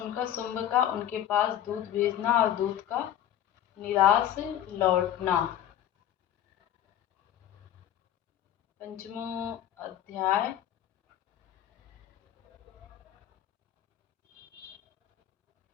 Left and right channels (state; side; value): quieter; right; 11.2 dB